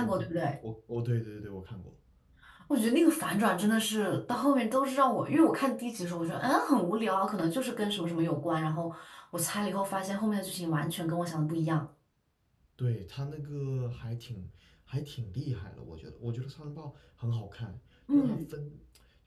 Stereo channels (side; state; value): both; identical; correlation 1.00